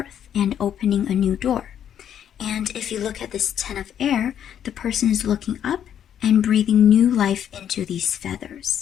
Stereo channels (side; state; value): right; quieter; 9.5 dB